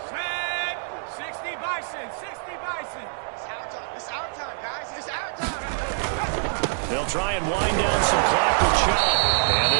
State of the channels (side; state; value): left; silent; digital silence